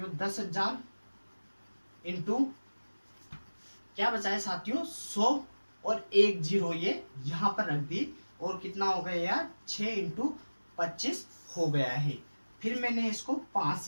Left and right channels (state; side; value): inverted; both; correlation -1.00